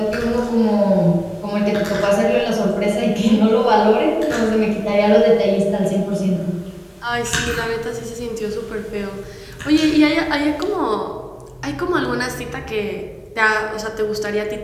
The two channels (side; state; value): both; identical; correlation 1.00